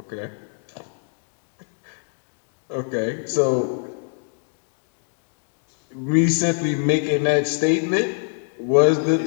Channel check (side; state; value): right; silent; 60 dB below the other